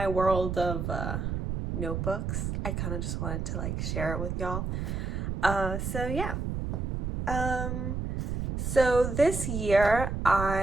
world of notebooks, I kind of just wanted to like share it with y'all. So yeah. So this year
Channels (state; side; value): noise; right; rumble, 2 dB below the sound